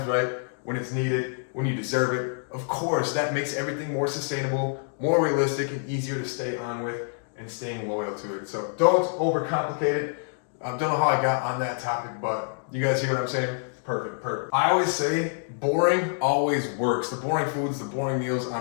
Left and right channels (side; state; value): right; silent; digital silence